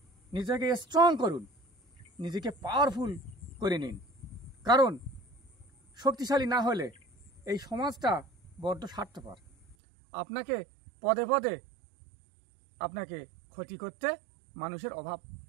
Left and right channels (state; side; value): drops out; left; at 9.8 s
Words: নিজেকে স্ট্রং করুন, নিজেকে পাওয়ারফুল করে নিন। কারণ শক্তিশালী না হলে এই সমাজটা বড্ড স্বার্থপর। আপনাকে পদে পদে আপনাকে ক্ষতি করতে মানুষের অভাব